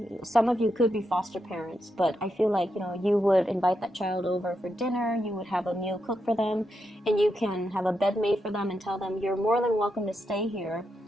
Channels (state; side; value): normal; both; correlation 0.84